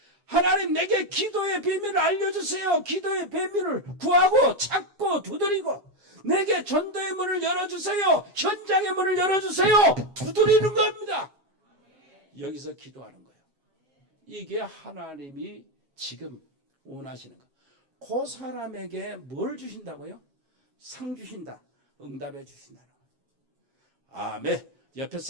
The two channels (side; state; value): left; late; 7.4 ms